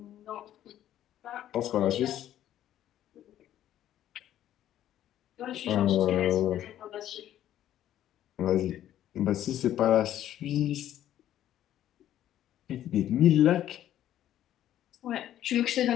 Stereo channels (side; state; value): right; quieter; 12.0 dB